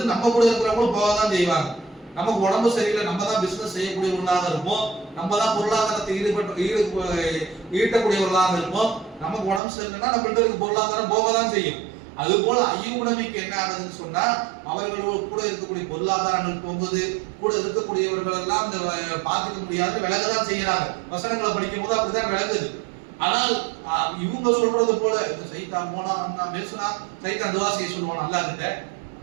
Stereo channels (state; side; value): drops out; left; at 9.6 s